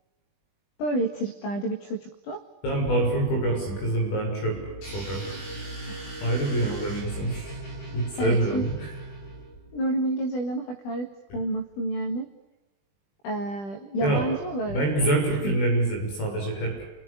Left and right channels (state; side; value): late; right; 20 ms